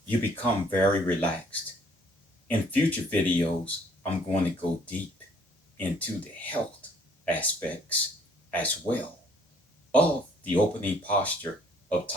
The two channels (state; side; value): normal; both; correlation 0.61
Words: You become very relaxed. In future videos, I'm going to go deep into the health aspects as well of the opening posture of